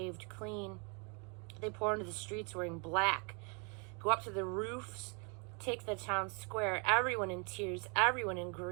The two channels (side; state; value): left; quieter; 34.7 dB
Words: clean. They pour into the streets wearing black, go up to the roofs, take the town square, everyone in tears, everyone in